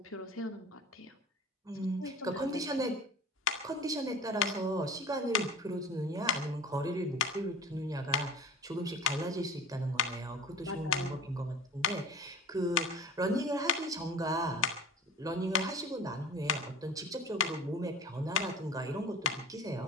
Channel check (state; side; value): normal; both; correlation 0.39